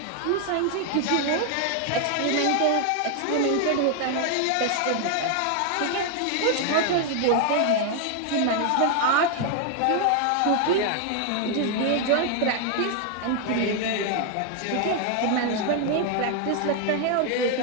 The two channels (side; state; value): both; different; correlation 0.00